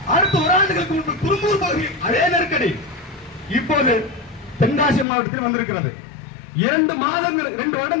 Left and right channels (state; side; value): drops out; right; at 5.1 s